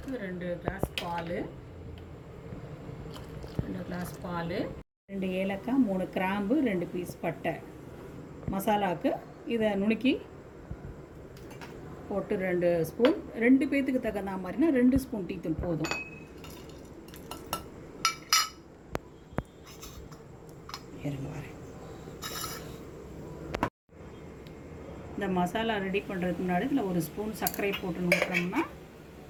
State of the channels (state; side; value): identical; both; correlation 1.00